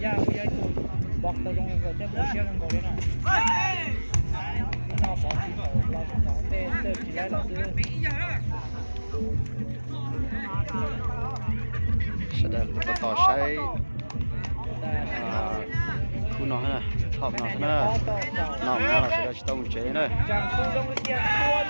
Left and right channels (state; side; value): inverted; both; correlation -1.00